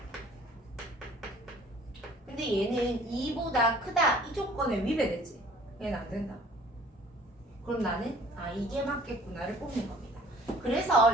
근데 얘는 2보다 크다 이 조건에 위배되지. 얘는 안 된다. 그럼 나는 이게 맞겠구나를 뽑는 겁니다. 그래서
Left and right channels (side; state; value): both; normal; correlation 0.53